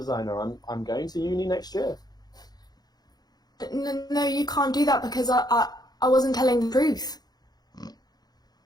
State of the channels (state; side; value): late; right; 0.19 ms